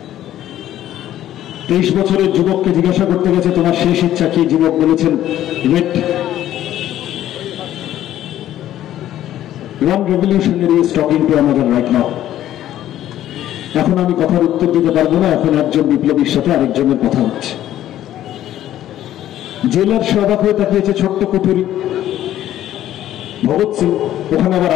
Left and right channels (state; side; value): quieter; right; 12.5 dB